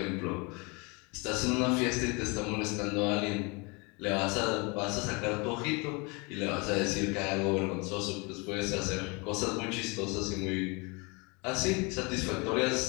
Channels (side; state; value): right; quieter; 29.2 dB